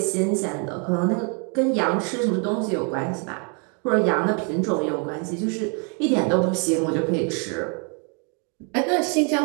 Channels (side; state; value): left; quieter; 37.5 dB